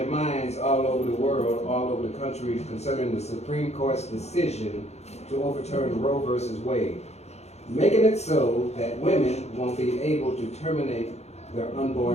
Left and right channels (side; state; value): right; late; 0.31 ms